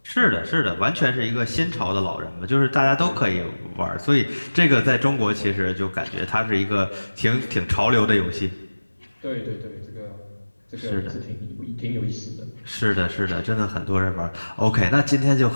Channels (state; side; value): inverted; both; correlation -1.00